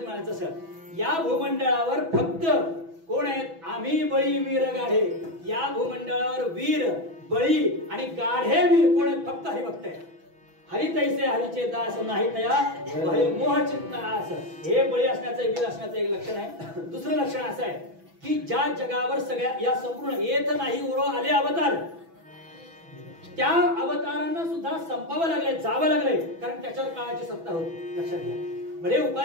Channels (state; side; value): late; left; 6.1 ms